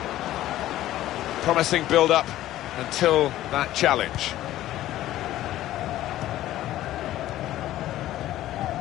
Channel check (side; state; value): right; quieter; 14.2 dB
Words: Promising build-up until that challenge.